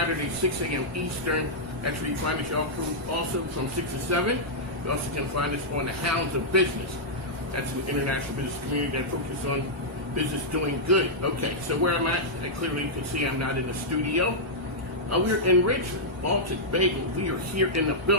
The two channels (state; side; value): normal; both; correlation -0.09